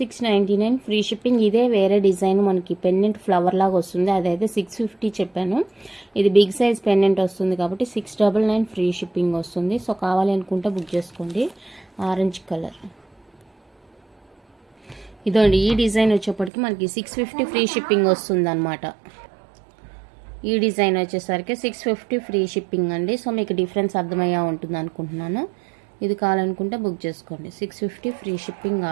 free shipping. ఇదే వేరే డిజైన్ మనకి పెండెంట్ ఫ్లవర్ లాగా వస్తుంది, అదైతే 650 చెప్పాను. ఇది బిగ్ సైజ్ పెండెంట్ వస్తుంది కాబట్టి 699 ఫ్రీ షిప్పింగ్ వస్తుంది. సో కావాలి అనుకుంటే బుక్ చేసుకోండి. ఆరెంజ్ కలర్ ఇదండి. ఈ డిజైన్ వచ్చేప్పటికి మనకి 650 ఫ్రీ షిప్పింగ్ వస్తుంది అనమాట. ఈ డిజైన్ వచ్చేసరికి 650 ఫ్రీ షిప్పింగ్ అండి. సో మీకు డిఫరెన్స్ అర్థమయ్యా ఉంటుంది అనుకుంటున్నాను. ఇది కావాలనుకుంటే బుక్ చేసుకోండి. 650 free shipping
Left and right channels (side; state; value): left; drops out; at 16.5 s